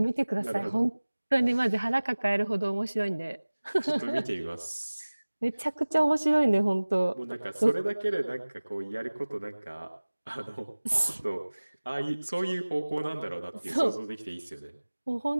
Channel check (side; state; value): both; inverted; correlation -1.00